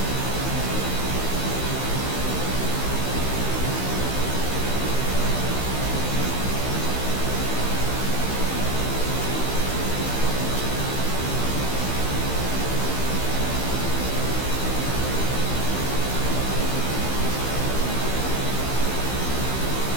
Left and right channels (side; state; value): right; late; 15 ms